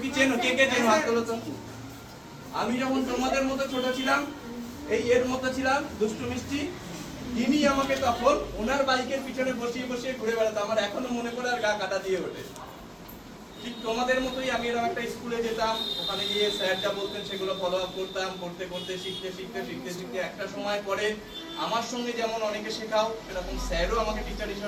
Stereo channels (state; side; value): identical; both; correlation 1.00